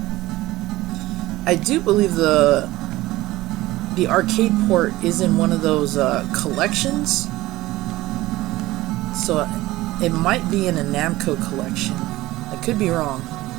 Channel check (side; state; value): left; quieter; 17.7 dB